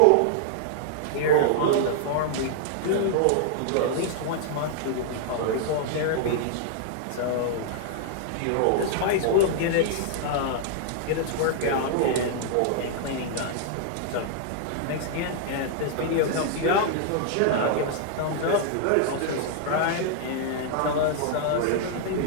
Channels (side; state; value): both; different; correlation -0.01